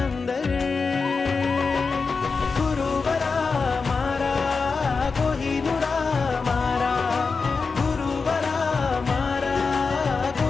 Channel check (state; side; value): quieter; right; 4.6 dB